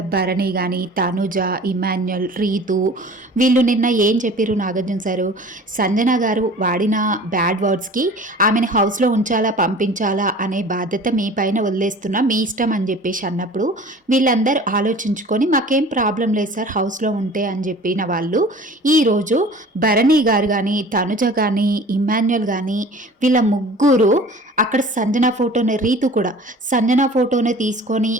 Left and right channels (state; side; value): normal; both; correlation 0.44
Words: భరణి కానీ తనుజ, ఇమాన్యుల్, రీతు వీళ్ళు నిన్న ఏం చెప్పారు నాగార్జున సారు, సంజన గారు వాడిన బ్యాడ్ వర్డ్స్కి ఆమెను హౌస్లో ఉంచాలా పంపించాలా అనే బాధ్యత మీ పైన వదిలేస్తున్నా, మీ ఇష్టం అని చెప్పేసి అన్నప్పుడు వీళ్ళందరూ ఆలోచించుకొని మాకేం ప్రాబ్లం లేదు సార్ హౌస్లో ఉంటే అని చెప్పిన వాళ్ళు ఈరోజు భరణి గారు కానీ తనుజ కానీ ఇమాన్యుల్ కానీ వీళ్ళ ముగ్గురు అక్కడ సంజన ఫోటోని, రీతు కూడా సంజన ఫోటోని తీసుకొని